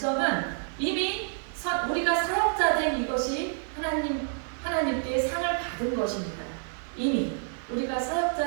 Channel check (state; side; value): silent; left; 59 dB below the other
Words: 이미 우리가 사역자 된 이것이 하나님께 상을 받은 것입니다. 이미 우리가